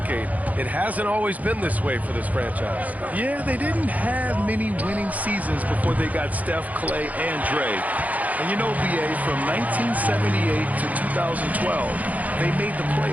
it hasn't always been this way for this franchise. Yeah, they didn't have many winning seasons before they got Steph, Clay, and Dre. And you know, BA, from 1978 to 2012, they made the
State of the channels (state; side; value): late; left; 0.075 ms